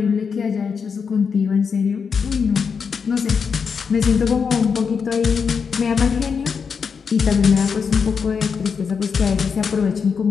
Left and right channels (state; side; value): quieter; right; 6.0 dB